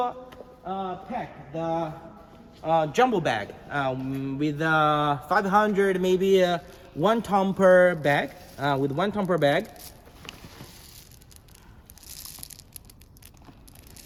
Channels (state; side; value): identical; both; correlation 1.00